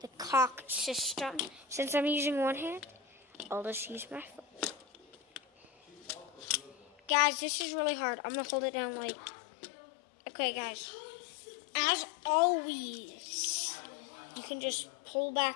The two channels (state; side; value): drops out; right; at 7.1 s